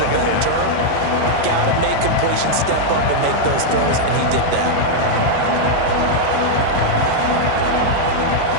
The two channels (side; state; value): both; different; correlation -0.01